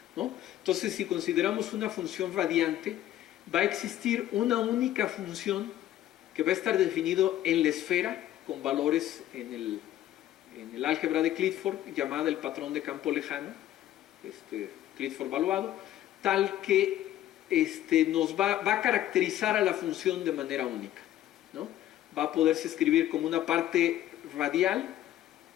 ¿no? Entonces, si consideramos una función radiante, va a existir una única función que va a estar definido en la esfera con valores en el álgebra de Clifford, llamada el patrón de campo lejano, Clifford valuado, tal que nos va a caracterizar a la función de manera única, ¿no? Va a poderse escribir como una parte radial,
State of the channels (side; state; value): right; quieter; 12.9 dB